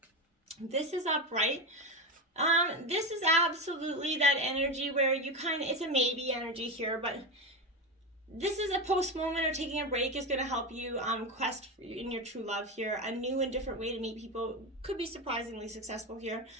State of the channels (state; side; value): normal; both; correlation 0.17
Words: This is upright. This is absolutely that energy where you it's a maybe energy here, but This is a post moment, or taking a break is going to help you quest in your true love here. A new and different way to meet people could be surprisingly successful here.